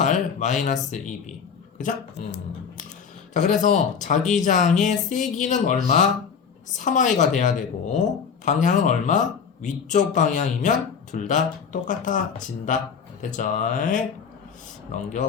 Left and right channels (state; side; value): quieter; right; 6.5 dB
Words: 마이너스 2B. 그죠? 자, 그래서 자기장의 세기는 얼마? 3I가 돼야 되고 방향은 얼마? 위쪽 방향이면 둘 다 똑같아진다. 됐죠?